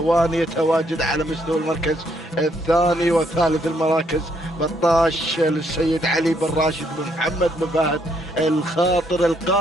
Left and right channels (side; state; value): both; normal; correlation 0.72